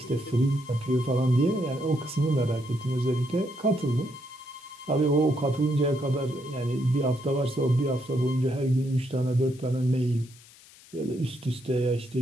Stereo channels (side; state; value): left; noise; hiss, 23 dB below the sound